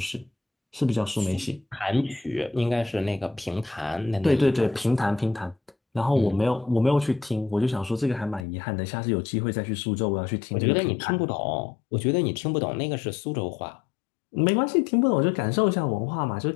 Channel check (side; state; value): right; drops out; at 8.5 s